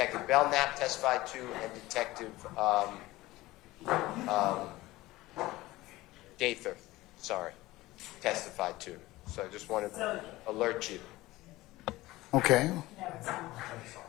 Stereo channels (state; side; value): quieter; right; 18.5 dB